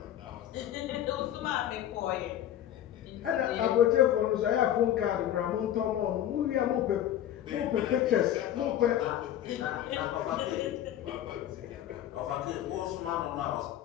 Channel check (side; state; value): right; quieter; 11.5 dB